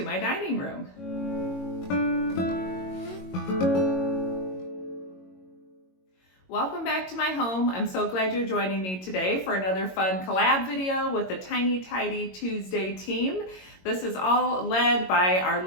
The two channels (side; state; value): right; late; 22 ms